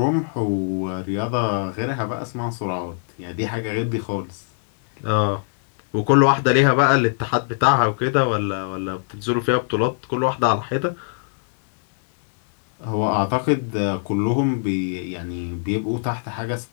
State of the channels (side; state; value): right; silent; digital silence